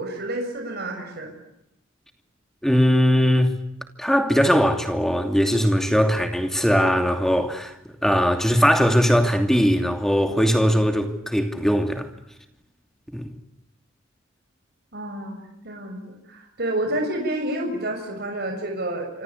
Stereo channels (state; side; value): normal; both; correlation 0.87